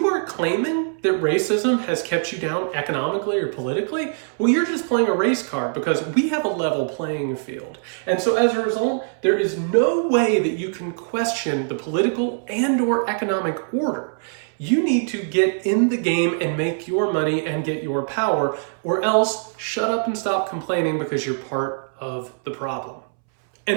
are claiming that racism has kept you down economically or politically, well, you're just playing a race card because we have a level playing field. And so as a result, there is no way that you can question the political and or economic order. You need to get in the game and make your money and get your power, or else shut up and stop complaining because you're part of the problem.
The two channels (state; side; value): silent; left; 64 dB below the other